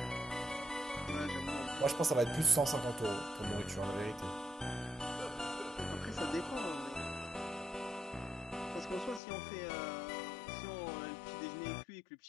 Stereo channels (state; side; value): drops out; right; at 9.2 s